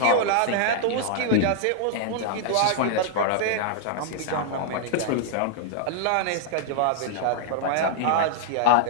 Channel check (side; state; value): both; different; correlation -0.01